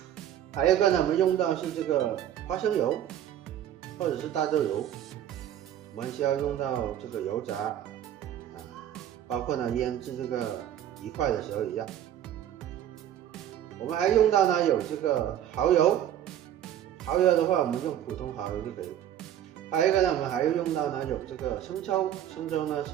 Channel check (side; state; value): left; quieter; 10.9 dB